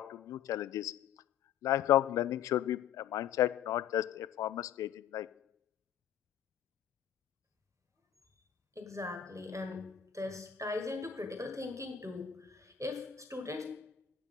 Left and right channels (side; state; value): right; quieter; 9.6 dB